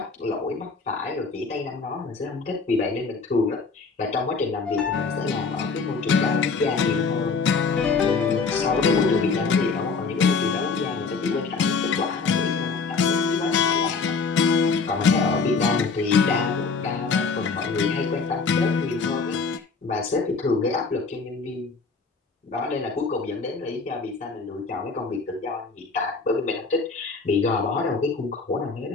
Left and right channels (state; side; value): quieter; right; 4.6 dB